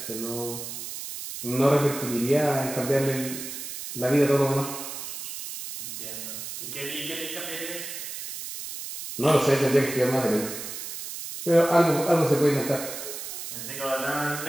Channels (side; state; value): right; noise; hiss, 8 dB below the sound